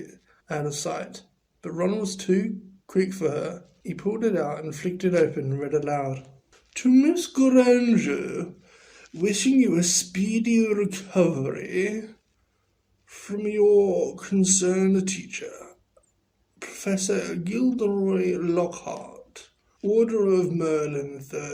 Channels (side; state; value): both; identical; correlation 1.00